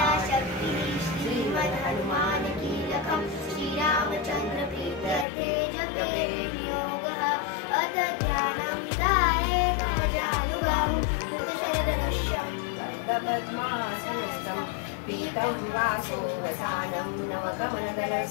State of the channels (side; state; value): right; drops out; at 5.2 s